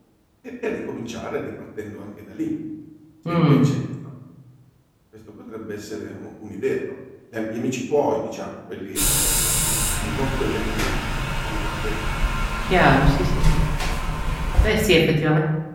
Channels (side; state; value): both; identical; correlation 1.00